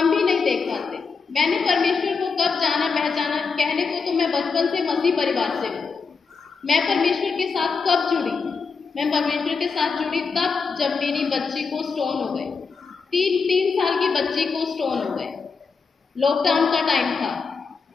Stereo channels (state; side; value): quieter; right; 5.0 dB